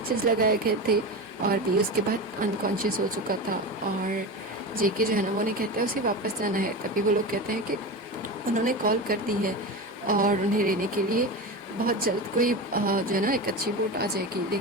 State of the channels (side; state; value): both; normal; correlation 0.24